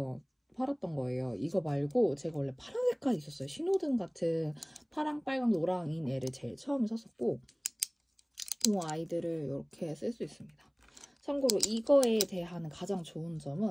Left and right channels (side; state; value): both; identical; correlation 1.00